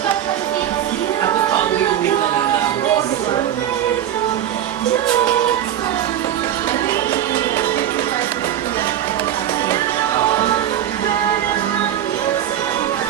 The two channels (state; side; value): quieter; left; 11.0 dB